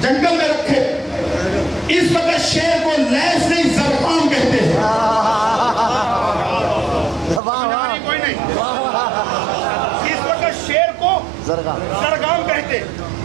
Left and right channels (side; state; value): left; drops out; at 7.4 s